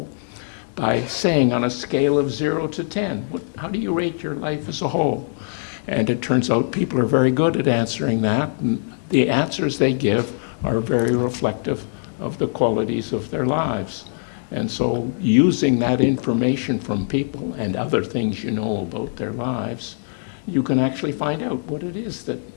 by saying, on a scale of 0 to 10, how do you rate your life as a whole? And it turns out people are very good at answering that, and the answers they give are very reflective of the qualities of their lives. And so using that information from people and other things you know about their lives, you can actually find out what it is that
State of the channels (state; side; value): silent; right; digital silence